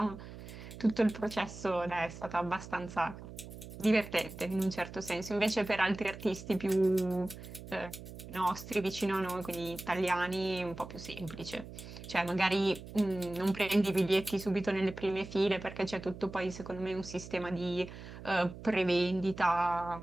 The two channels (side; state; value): right; noise; hum, 13 dB below the sound